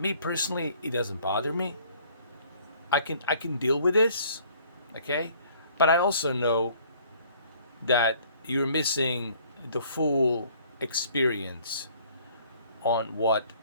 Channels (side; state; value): both; inverted; correlation -0.58